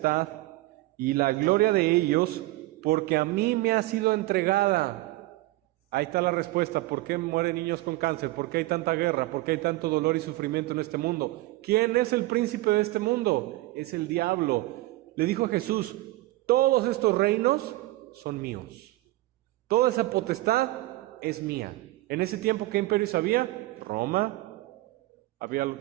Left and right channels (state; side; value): quieter; left; 18.6 dB